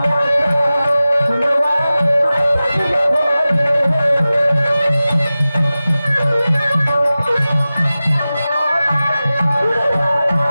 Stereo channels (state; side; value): inverted; both; correlation -0.96